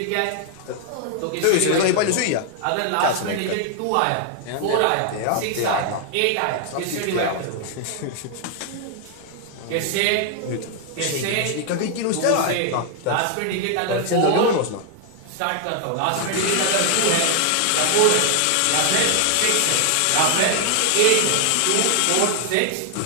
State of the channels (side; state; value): both; different; correlation 0.00